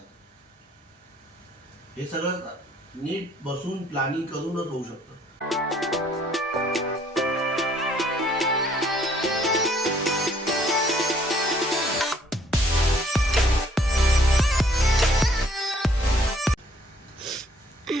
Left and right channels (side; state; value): both; normal; correlation 0.63